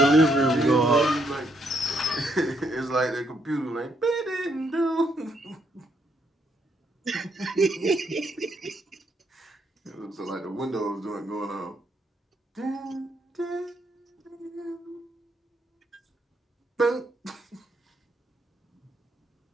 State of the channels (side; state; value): both; normal; correlation 0.74